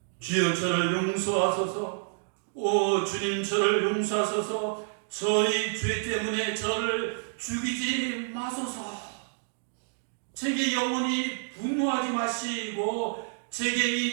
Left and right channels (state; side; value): silent; left; digital silence